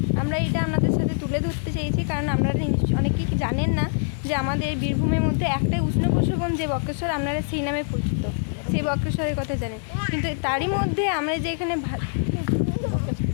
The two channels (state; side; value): silent; right; 62 dB below the other